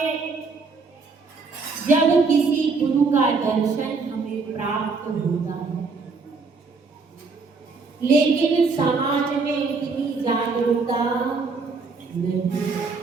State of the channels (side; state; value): left; quieter; 4.4 dB